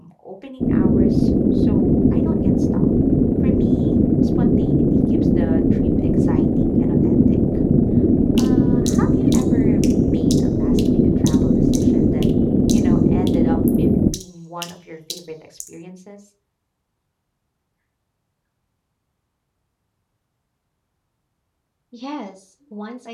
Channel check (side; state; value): both; identical; correlation 1.00